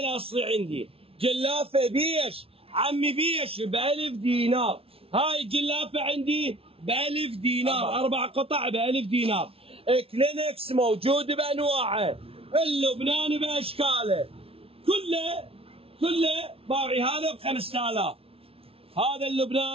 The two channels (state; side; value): late; left; 0.27 ms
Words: عندي جلافه بيش عمي بيش ب1000 دينار. هاي جلافه عندي ب1000 دينار. 4 قطع ب1000 دينار. كلينكس موجود بانواعه، اللبناني باشكاله كله باوعي. هذا ب5000. هذا